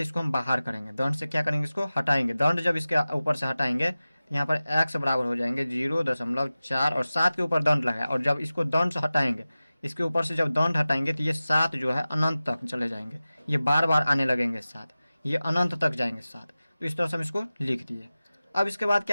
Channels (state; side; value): inverted; both; correlation -0.96